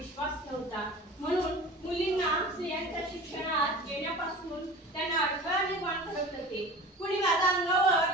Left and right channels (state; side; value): normal; both; correlation 0.37